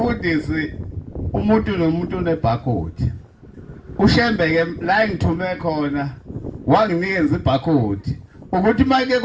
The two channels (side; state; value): both; identical; correlation 1.00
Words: umuntu nomuntu unebarcode ushembeke la ngithume khona wanginikeza ibarcode ukuthi manje